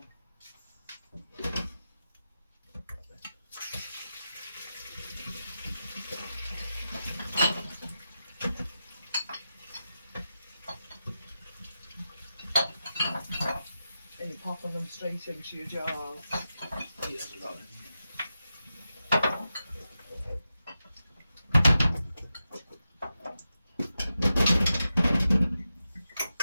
And you're popping them straight into your jars. He hasn't got any.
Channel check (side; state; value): both; inverted; correlation -0.91